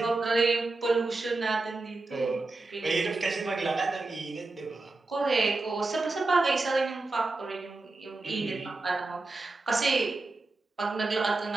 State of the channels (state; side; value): quieter; left; 3.4 dB